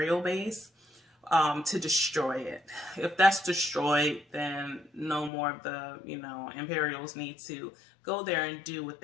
base, to destroy it. If that's destroyed, then no more of the, you know, Imperials need to go there and do what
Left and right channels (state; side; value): drops out; right; at 5.3 s